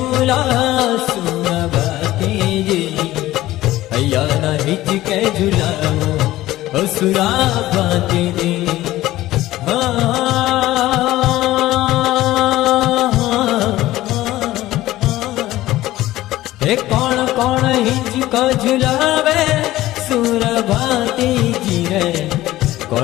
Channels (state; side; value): quieter; right; 16.0 dB